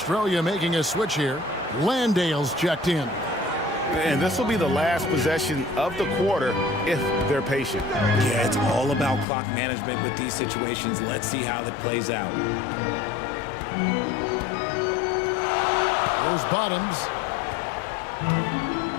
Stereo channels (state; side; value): drops out; right; at 9.2 s